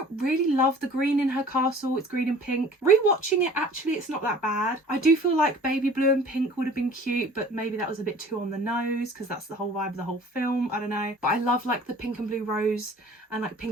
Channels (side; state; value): both; normal; correlation 0.48